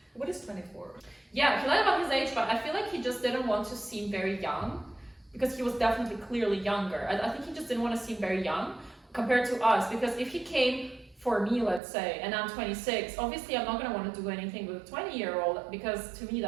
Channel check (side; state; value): left; drops out; at 11.8 s